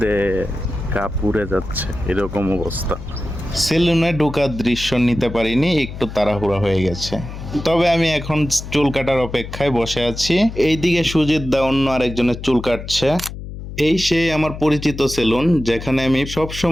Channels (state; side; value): noise; left; hum, 10 dB below the sound